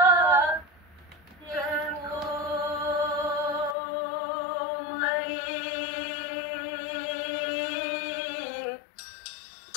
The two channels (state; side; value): drops out; right; at 3.8 s